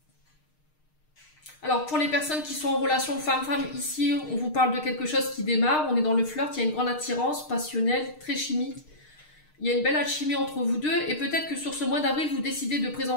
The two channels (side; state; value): right; late; 6.5 ms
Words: Alors, pour les personnes qui sont en relation femme-femme, ici, on vous parle de quelque chose qui démarre. On est dans le flirt, il y a une grande attirance passionnelle, très chimique. Il y a une belle alchimie entre vous deux. Et peut-être que sur ce mois d'avril, vous décidez de